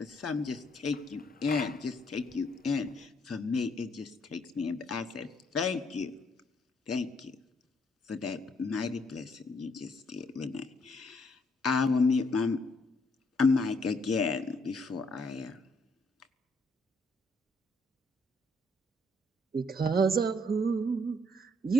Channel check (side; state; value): both; normal; correlation 0.70